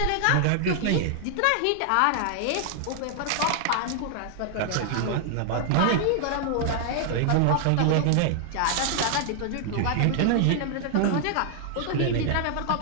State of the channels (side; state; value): both; different; correlation 0.00